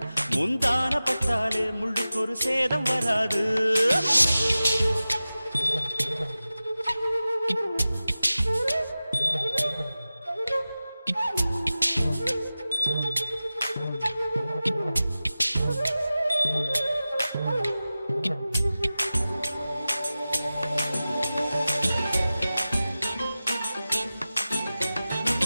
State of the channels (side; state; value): both; inverted; correlation -0.95